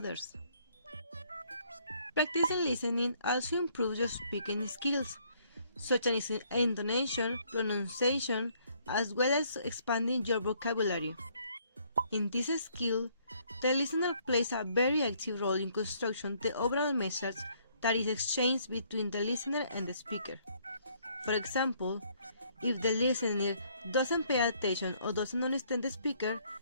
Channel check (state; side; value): inverted; both; correlation -0.65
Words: Practicing listening also improves your speaking skills, such as intonation, pronunciation, as well as expanding your vocabulary. In this skill, the listener plays a very active role in constructing the overall message that is exchanged between the listener and the speaker. For example, if the listener doesn't pay attention or doesn't understand the speaker,